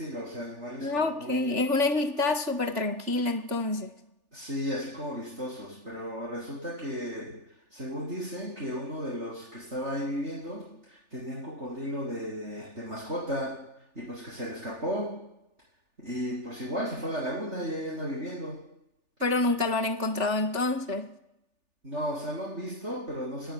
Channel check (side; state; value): left; late; 3.4 ms